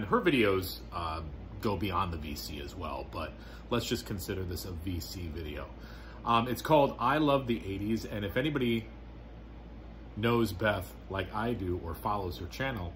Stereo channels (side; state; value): both; identical; correlation 1.00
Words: her videos go beyond the VC as well, but let's just consider this a VC video. It's called I Love the 80s, and if anybody knows Beth like I do or follows her channel,